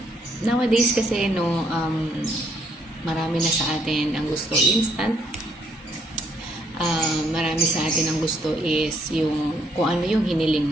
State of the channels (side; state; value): both; normal; correlation 0.70